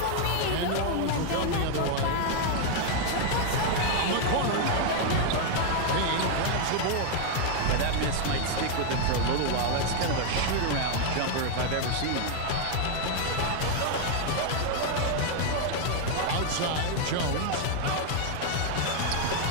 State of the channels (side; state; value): both; different; correlation 0.00